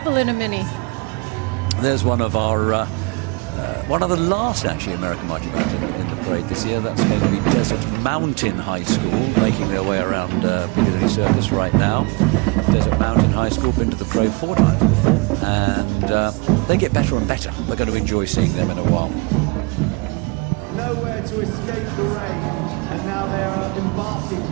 in a mini. There's one of our, one of the last actually American marching bands in the parade this year. That's the Mountain High School, making their way around Piccadilly Circus right now. Desert Mountain High School, been to the parade 4 times before, and they get better and better. We're going to enjoy seeing them in a while. Nowhere to escape the rain, and now they are embarking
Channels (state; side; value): quieter; left; 29.6 dB